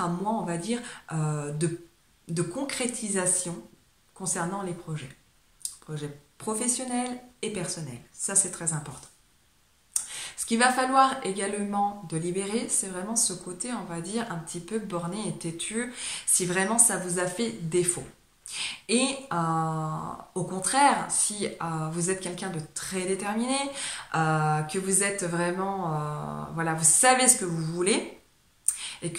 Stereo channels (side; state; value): both; identical; correlation 1.00